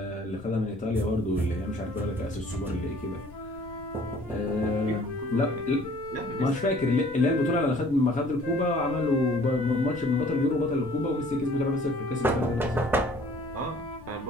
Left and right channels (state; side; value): noise; left; rumble, 20 dB below the sound